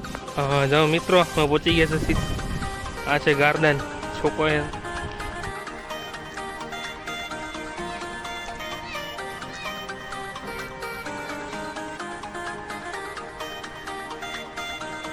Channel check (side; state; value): both; identical; correlation 1.00